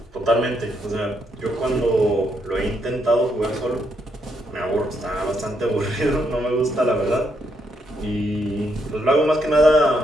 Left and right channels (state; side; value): normal; both; correlation 0.77